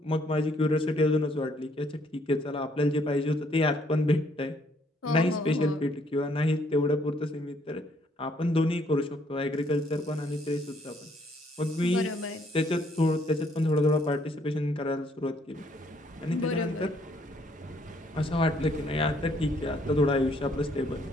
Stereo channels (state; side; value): normal; both; correlation 0.67